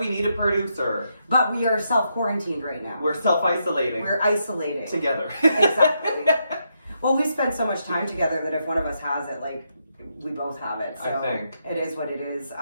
need a producer. But we are self-quarantined right now. We're self-isolating. We're isolating. Together. Exactly. Well, we spend so much time together that if one of us has it, like, we both have it. So I think. it is what it is.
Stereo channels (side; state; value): both; inverted; correlation -0.80